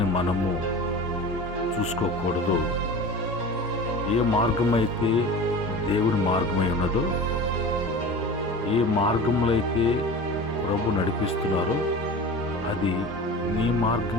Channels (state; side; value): normal; both; correlation 0.34